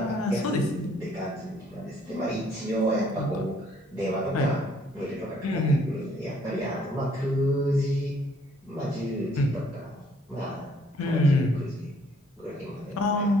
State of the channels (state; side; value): normal; both; correlation 0.63